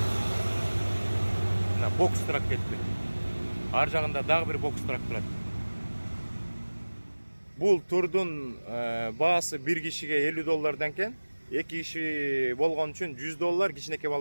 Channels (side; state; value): both; inverted; correlation -1.00